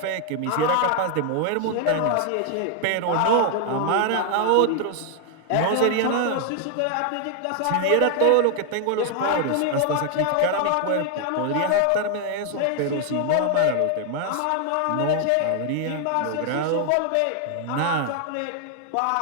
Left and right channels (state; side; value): different; both; correlation 0.00